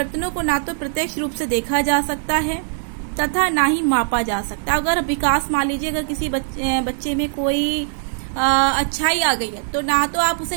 को ना तो प्रत्यक्ष रूप से देखा जा सकता है तथा ना ही मापा जा सकता। अगर विकास, मान लीजिए अगर किसी बच्चे में कोई अच्छाई आ गई है तो ना तो आप उसे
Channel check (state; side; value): silent; left; 57 dB below the other